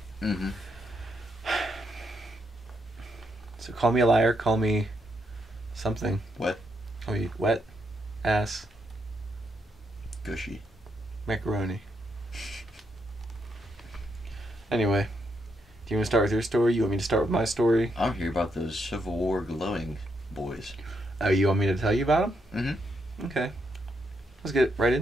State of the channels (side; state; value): both; normal; correlation 0.78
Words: Mm-hmm. So call me a liar, call me something. Wet. Call me wet ass Gushy. macaroni. Anyway, do you want to start with your story? You want me to start with my story? I'm here about those Civil War glowing boys. Oh, you want me to tell you about them? Mm-hmm. Okay. Let's get right